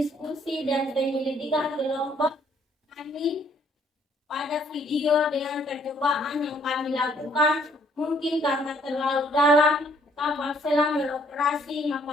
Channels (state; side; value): normal; both; correlation 0.65